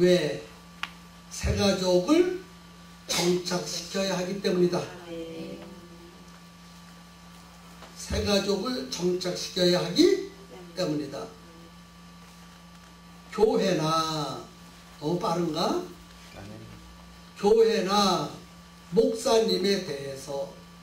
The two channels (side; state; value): both; identical; correlation 1.00